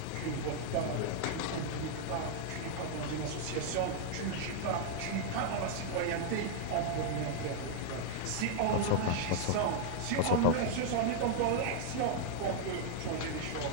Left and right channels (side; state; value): both; different; correlation -0.01